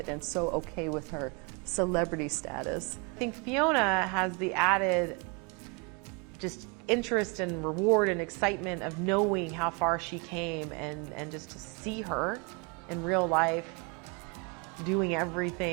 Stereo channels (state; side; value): quieter; left; 31.7 dB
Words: and so okay with her celebrity status. I think Fiona has the added just interest and reward and excitement of knowing how far she came, and just to see her in real life doing